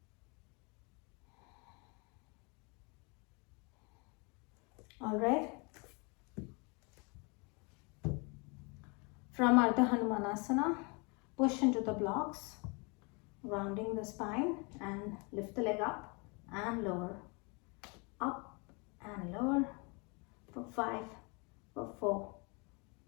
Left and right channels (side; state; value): right; quieter; 31.3 dB